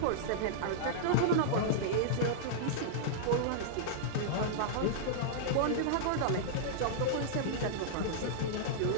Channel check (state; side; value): different; both; correlation -0.02